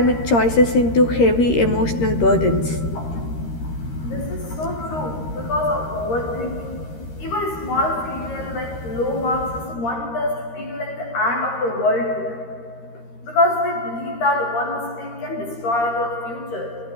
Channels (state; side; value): late; right; 13 ms